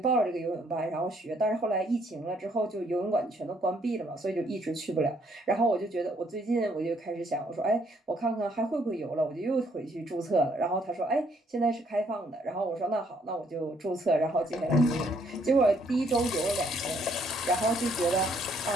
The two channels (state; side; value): normal; both; correlation 0.68